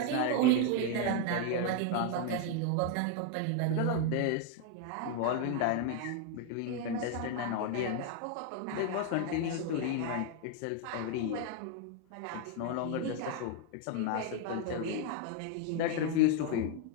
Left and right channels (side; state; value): both; different; correlation 0.01